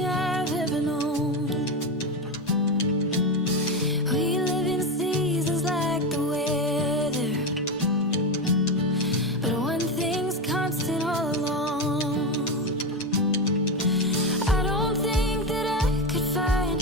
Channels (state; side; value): normal; both; correlation 0.16